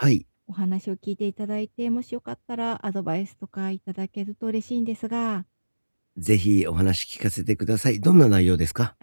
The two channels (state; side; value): inverted; both; correlation -1.00